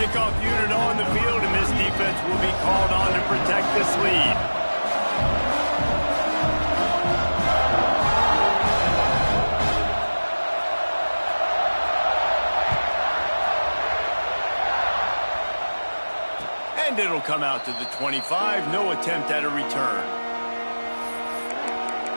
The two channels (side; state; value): both; inverted; correlation -1.00